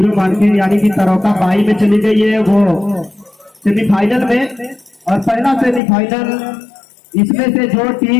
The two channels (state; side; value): drops out; right; at 5.8 s